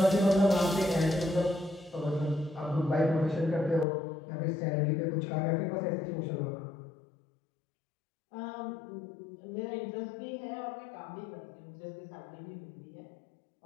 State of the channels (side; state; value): right; drops out; at 3.9 s